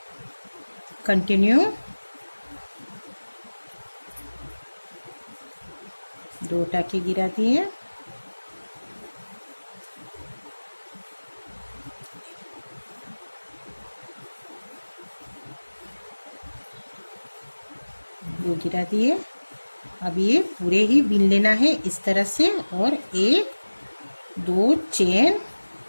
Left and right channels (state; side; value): inverted; both; correlation -1.00